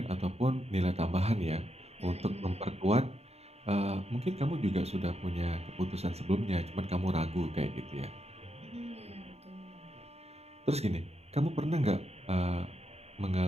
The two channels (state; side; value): late; left; 0.30 ms